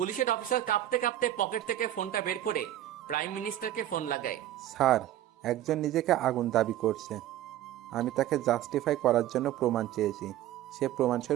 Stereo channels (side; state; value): left; quieter; 12.9 dB